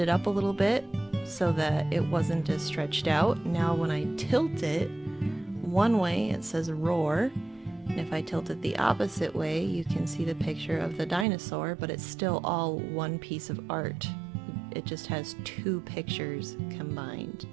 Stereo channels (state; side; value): drops out; left; at 11.2 s